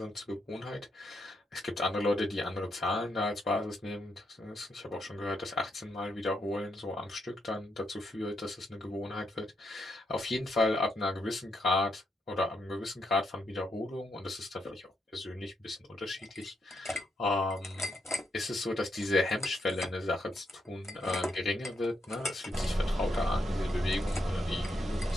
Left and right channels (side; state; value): both; normal; correlation 0.80